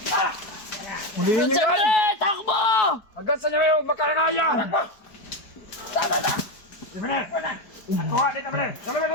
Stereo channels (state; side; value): late; right; 4.7 ms